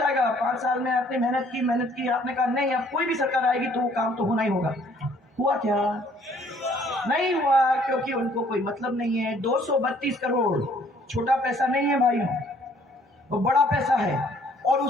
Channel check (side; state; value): both; normal; correlation 0.61